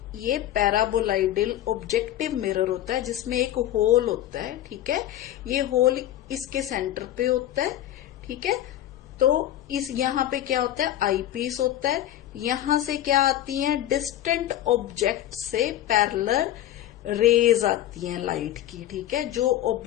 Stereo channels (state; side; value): quieter; right; 12.8 dB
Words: ये पैराबोलाइडल ऑब्जेक्टिव मिरर होता है जिसमें एक होल होता है। ठीक है, ये होल इसके सेंटर पे होता है। ठीक है, तो इस यहाँ पे क्या होता है, आई पीस होता है। यहां से क्या आती है, डिस्टेंट ऑब्जेक्ट से पैरेलल रेज आती हैं लाइट की। ठीक है, जो